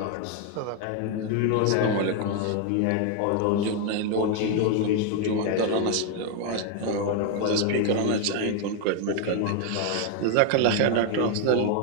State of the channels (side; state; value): both; different; correlation 0.01